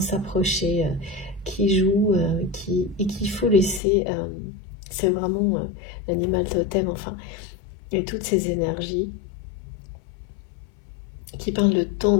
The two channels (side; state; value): right; drops out; at 3.8 s